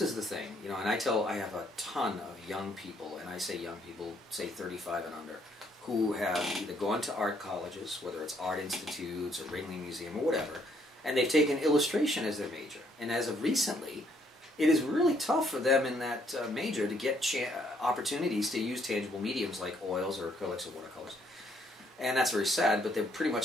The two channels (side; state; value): both; normal; correlation 0.68